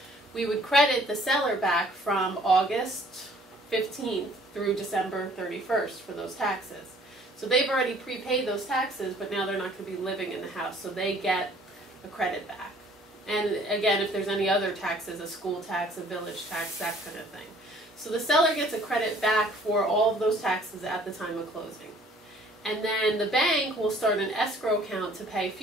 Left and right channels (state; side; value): normal; both; correlation 0.57